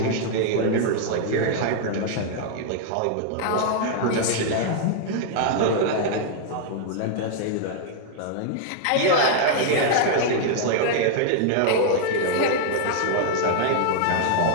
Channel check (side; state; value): both; different; correlation 0.00